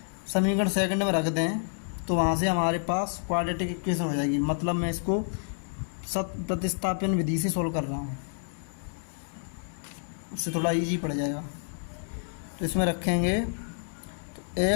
समीकरण सेकंड में रख दें तो वहाँ से हमारे पास क्वाड्रेटिक इक्वेशन हो जाएगी। मतलब मैं इसको सत प्रतिस्थापन विधि से सोल्व कर रहा हूँ, उससे थोड़ा इजी पड़ जाएगा। तो इसमें रखेंगे तो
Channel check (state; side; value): silent; right; digital silence